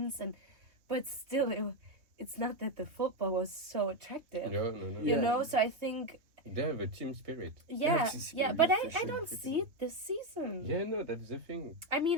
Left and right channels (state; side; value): late; left; 3.2 ms